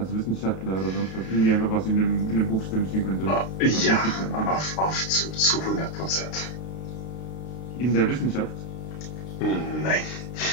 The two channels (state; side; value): late; right; 32 ms